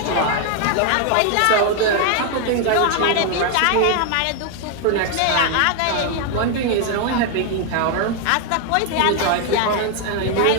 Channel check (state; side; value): different; both; correlation 0.00